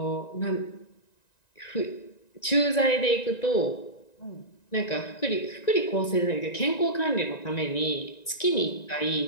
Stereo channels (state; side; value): late; right; 1.9 ms